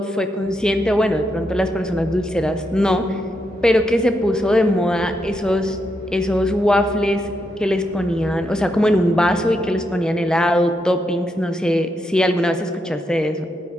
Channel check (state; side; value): normal; both; correlation 0.81